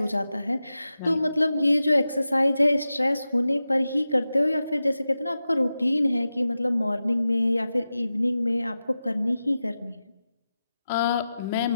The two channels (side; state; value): both; inverted; correlation -0.93